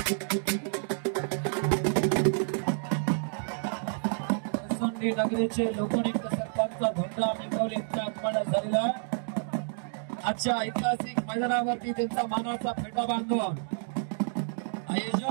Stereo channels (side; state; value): left; silent; digital silence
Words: सोंडी नगरीचे लोकनियुक्त सरपंच धोंडराम इंगवले यांच्या आगमनात झालेला आहे। आजच्या ऐतिहासिक मैदानावरती त्यांचा मानाचा फेटा बांधून